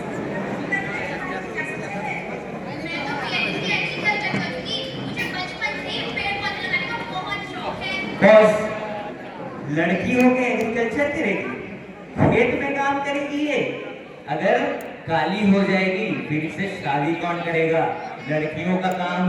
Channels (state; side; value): identical; both; correlation 1.00